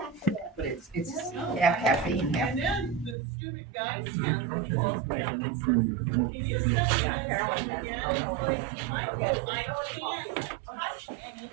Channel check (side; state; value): left; drops out; at 3.2 s